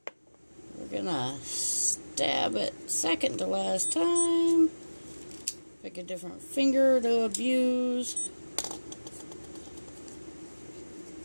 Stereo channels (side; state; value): both; inverted; correlation -1.00